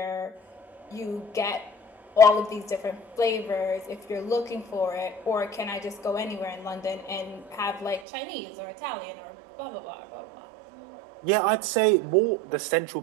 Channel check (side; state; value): left; drops out; at 8.0 s